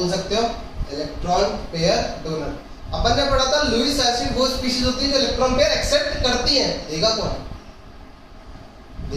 सकते हो, इलेक्ट्रॉन पेयर डोनर। अपन ने पढ़ा था लुईस एसिड वो स्पीशीज होती है जो इलेक्ट्रॉन पेयर एक्सेप्ट करती है। देगा कौन,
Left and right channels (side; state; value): both; identical; correlation 1.00